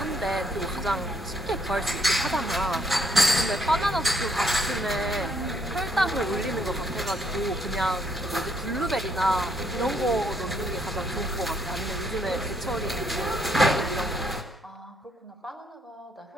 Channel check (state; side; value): normal; both; correlation 0.70